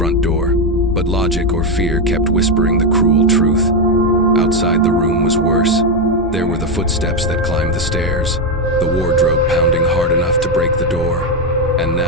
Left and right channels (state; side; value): normal; both; correlation 0.06